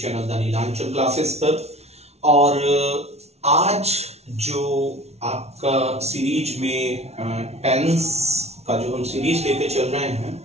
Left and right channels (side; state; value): left; late; 0.31 ms